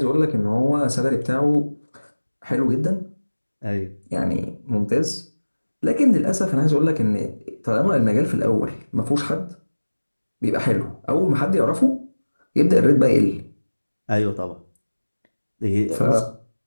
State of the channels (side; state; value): both; inverted; correlation -1.00